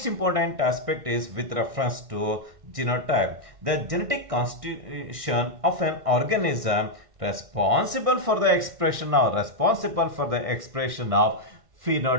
important aspect is with reference to genotype. The genetic constitution of an organism responsible for the expression of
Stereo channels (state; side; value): late; left; 1.6 ms